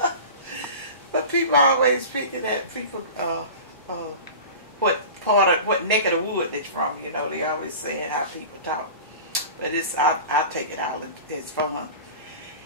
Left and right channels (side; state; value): both; inverted; correlation -0.34